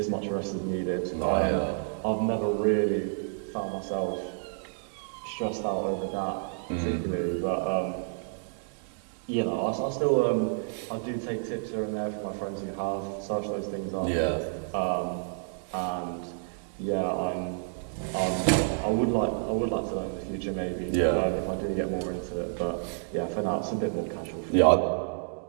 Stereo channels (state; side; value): silent; left; digital silence